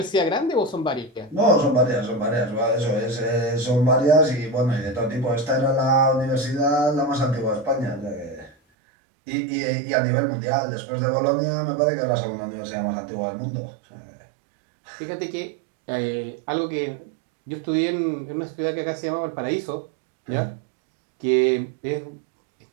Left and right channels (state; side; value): drops out; left; at 8.6 s